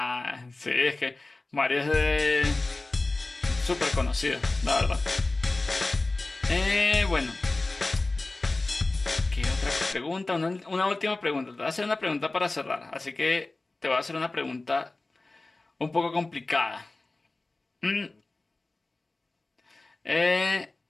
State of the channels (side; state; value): right; quieter; 3.1 dB